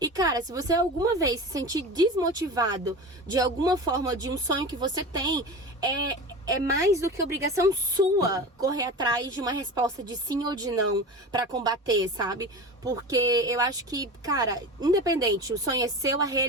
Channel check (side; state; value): both; normal; correlation 0.31